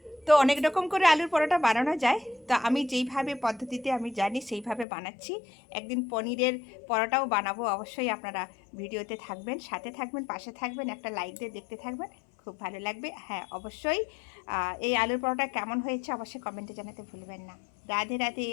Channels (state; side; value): drops out; right; at 4.9 s